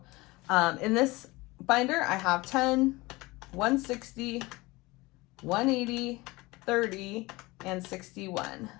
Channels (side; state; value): right; quieter; 21.9 dB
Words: in this binder, I have 10, 160, 180, 30 and 61.